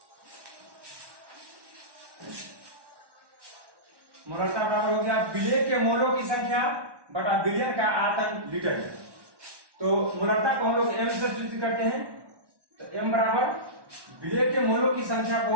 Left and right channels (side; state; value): left; late; 1.2 ms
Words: हो गया विलेय के मोलों की संख्या बटा बिलियन का आयतन लीटर में। तो मोलरता को हम लोग एम से सूचित करते हैं। तो एम बराबर विलेय के मोलों की संख्या